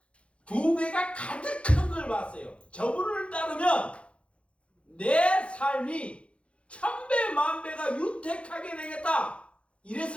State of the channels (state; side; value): late; right; 0.060 ms